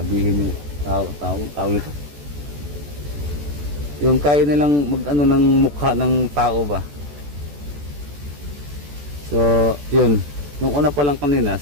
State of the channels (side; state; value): left; late; 14 ms